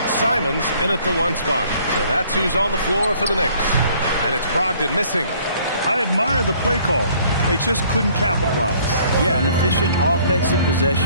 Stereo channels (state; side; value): inverted; both; correlation -0.59